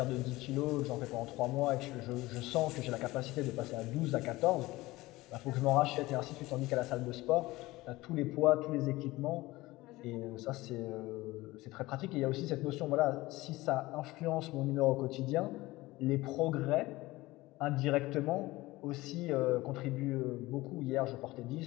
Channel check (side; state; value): right; quieter; 19.4 dB